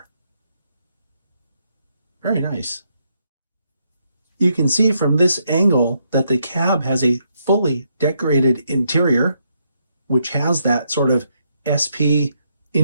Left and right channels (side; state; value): both; inverted; correlation -0.77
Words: Very nice. You can see from this angle that the cab has a fully decorated interior, which has that sort of SP